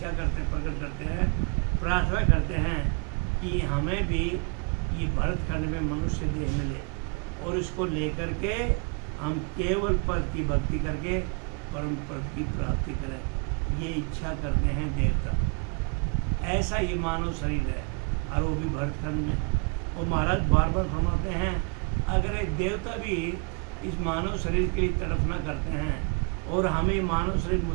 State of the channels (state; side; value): quieter; left; 36.7 dB